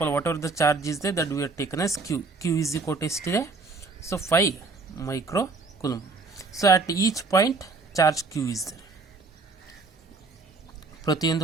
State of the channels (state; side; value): quieter; left; 3.9 dB